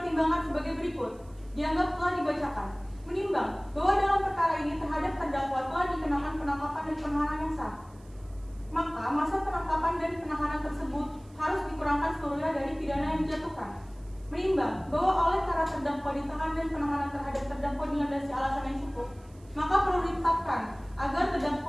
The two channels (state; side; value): noise; right; hiss, 30 dB below the sound